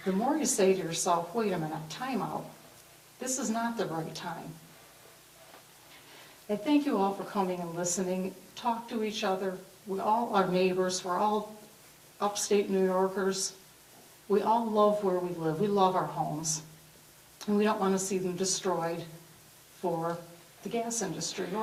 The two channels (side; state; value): both; identical; correlation 1.00